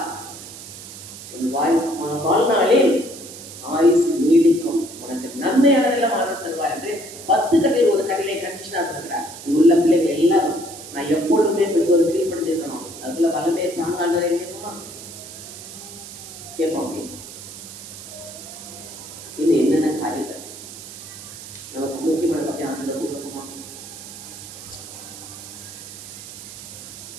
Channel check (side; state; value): right; noise; hiss, 13 dB below the sound